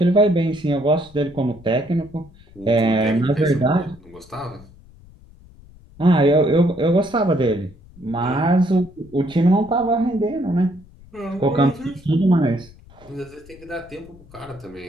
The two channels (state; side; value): noise; left; rumble, 23 dB below the sound